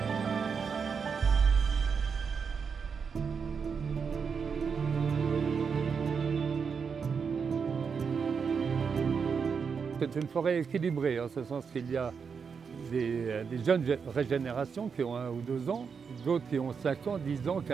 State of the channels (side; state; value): left; quieter; 6.0 dB